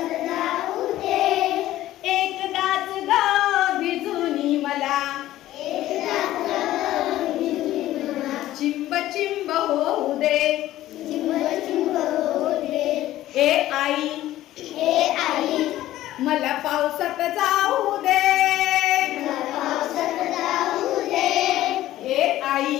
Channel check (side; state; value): right; quieter; 14.5 dB